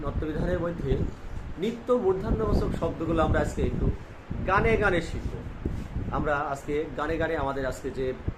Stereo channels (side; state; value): both; identical; correlation 1.00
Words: নত্যবিধানের মধ্যে নিত্য মূর্ধন্যবাচক শব্দগুলো আমরা আজকে একটু গানে গানে শিখব। আমরা আজকে গানে গানে আমাদের আজকে যে